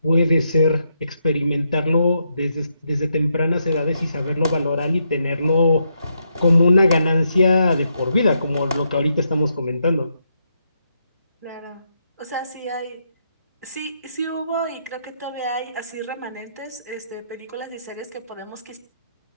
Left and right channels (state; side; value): inverted; both; correlation -0.79